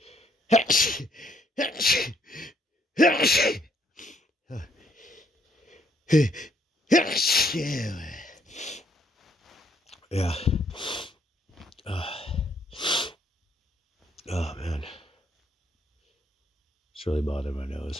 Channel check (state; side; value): normal; both; correlation 0.69